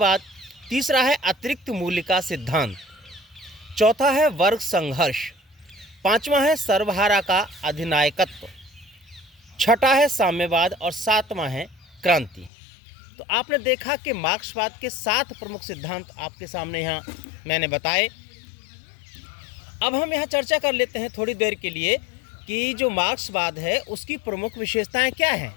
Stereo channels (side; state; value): right; drops out; at 12.5 s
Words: तीसरा है अतिरिक्त मूल्य का सिद्धांत, चौथा है वर्ग संघर्ष, पांचवा है सर्वहारा का अधिनायकत्व, छठा है साम्यवाद और सातवां है क्रांति। तो आपने देखा कि मार्क्सवाद के 7 प्रमुख सिद्धांत आपके सामने यहाँ मैंने बताए। अब हम यहाँ चर्चा कर लेते हैं थोड़ी देर के लिए कि जो मार्क्सवाद है उसकी प्रमुख विशेषताएं क्या हैं।